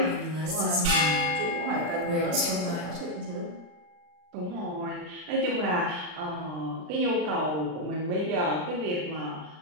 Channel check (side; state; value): left; late; 39 ms